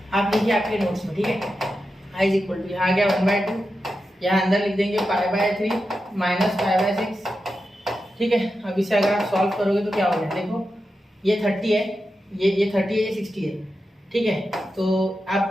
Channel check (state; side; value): normal; both; correlation 0.90